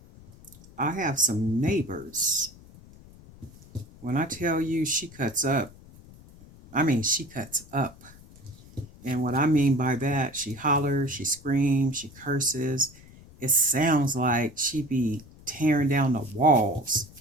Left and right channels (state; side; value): noise; left; rumble, 22 dB below the sound